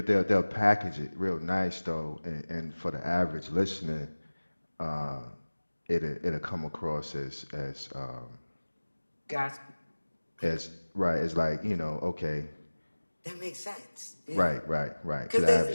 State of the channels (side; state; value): both; inverted; correlation -1.00